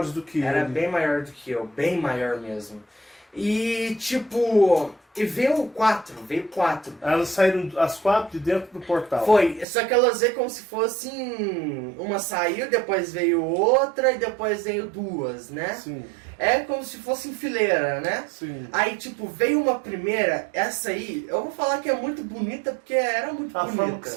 do que Era ele. bem maior do que eu, bem maior mesmo. E tipo, e veio 4. Elas saíram as 4 de dentro do portal. Foi, só que elas veio como se fossem. Uma saiu, depois veio outra e depois veio 2, né? Sim, É como se fosse em fileira, né? sim. Aí, tipo, veio uma primeira, essa aí, eu vou falar que é muito bonita, porque era muito A bonita. forma que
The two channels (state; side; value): drops out; left; at 9.7 s